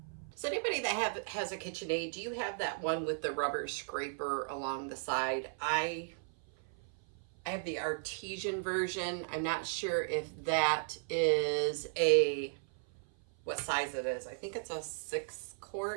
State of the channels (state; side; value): silent; left; 54 dB below the other